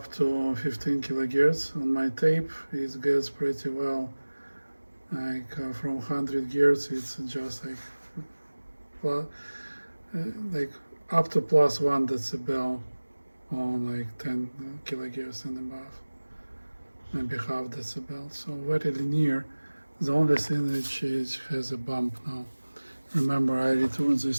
to 15 kilohertz. On my tape it gets pretty well, like from 100 Hz it's just like up to plus 1 decibel on like 10 kilohertz and above, maybe half decibel, so very linear. The only thing which has a bump now. Remember, I returned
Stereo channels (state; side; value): inverted; both; correlation -1.00